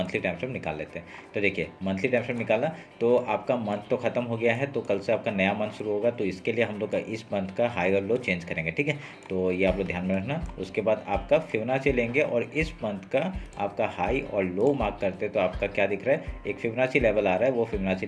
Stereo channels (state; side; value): identical; both; correlation 1.00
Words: टाइम फ्रेम निकाल लेते हैं। तो देखिए, मंथली टाइम फ्रेम निकाला तो आपका मंथ तो खत्म हो गया है, तो कल से आपका नया मंथ शुरू होगा। तो इसके लिए हम लोग का इस मंथ का हाई और लो चेंज करेंगे। ठीक है, तो ये आप लोग ध्यान में रखना। उसके बाद आपका फिबोनाची लेंगे और इस मंथ का आपका हाई और लो मार्क करते तो आपका क्या दिख रहा है, एक फिबोनाची लेवल आ रहा है, वो फिबोनाची